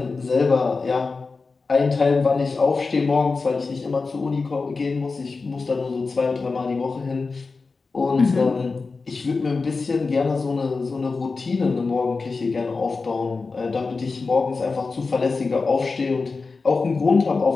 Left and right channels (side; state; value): right; quieter; 4.2 dB